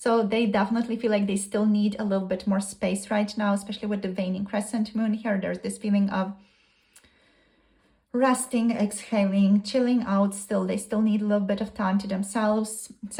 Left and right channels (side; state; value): both; identical; correlation 1.00